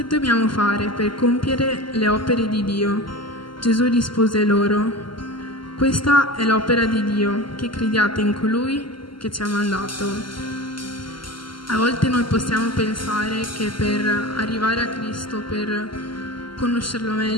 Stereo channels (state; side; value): late; right; 0.73 ms